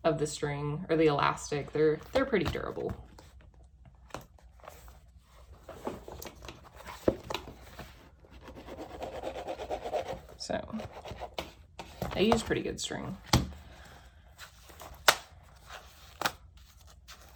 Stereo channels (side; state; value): both; identical; correlation 1.00